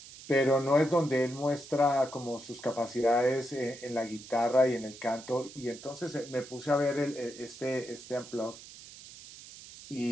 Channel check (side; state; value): right; noise; hiss, 16 dB below the sound